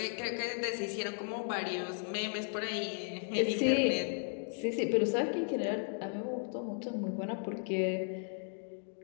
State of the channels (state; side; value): silent; right; 54 dB below the other